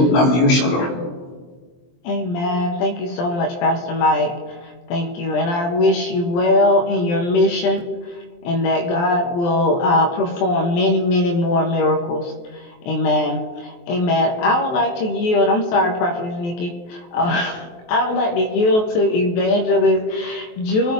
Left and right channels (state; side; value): late; right; 23 ms